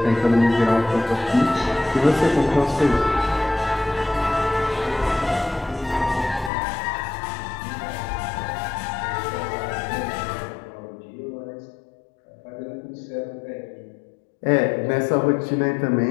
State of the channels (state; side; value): drops out; right; at 6.5 s